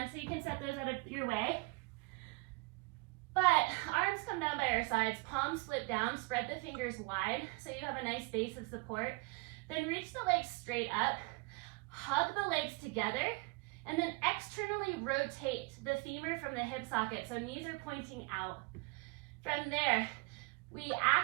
so you can set those out of your way. But arms come down by our sides, palms flip down, spread the fingers wide so you have a nice base of support. Then reach the legs straight up, hug the legs together, and then externally rotate the femur from the hip socket so knees are pointing out. From there, we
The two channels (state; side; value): quieter; left; 28.1 dB